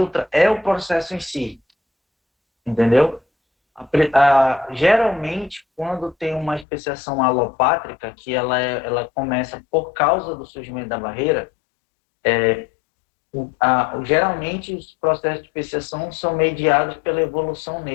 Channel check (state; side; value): drops out; right; at 6.7 s